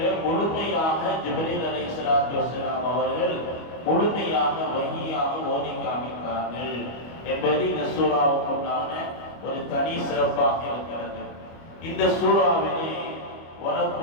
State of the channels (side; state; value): right; late; 25 ms